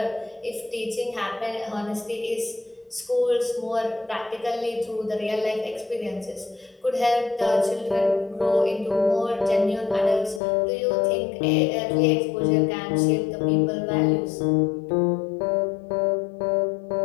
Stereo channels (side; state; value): right; drops out; at 10.4 s